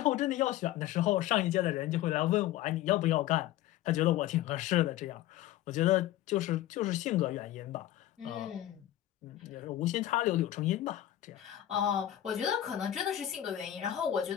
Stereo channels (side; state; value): right; quieter; 13.2 dB